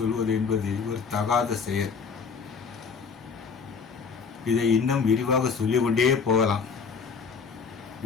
என்பது ஒரு தகாத செயல். இதை இன்னும் விரிவாக சொல்லிக்கொண்டே போகலாம்.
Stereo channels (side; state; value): right; quieter; 5.6 dB